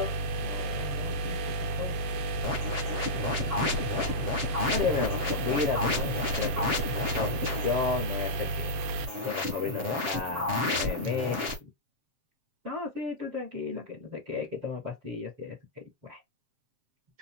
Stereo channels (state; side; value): late; left; 7.5 ms